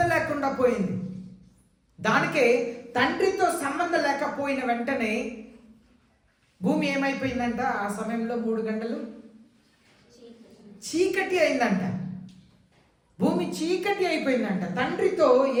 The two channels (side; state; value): both; identical; correlation 1.00